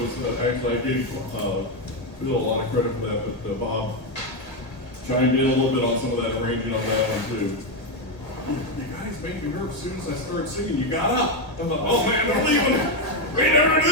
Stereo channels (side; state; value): right; late; 1.9 ms